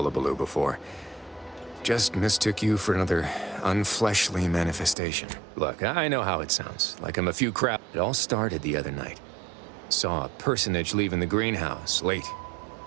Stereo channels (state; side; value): drops out; left; at 5.0 s